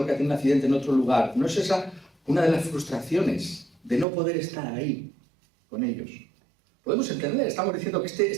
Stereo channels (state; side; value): drops out; left; at 4.0 s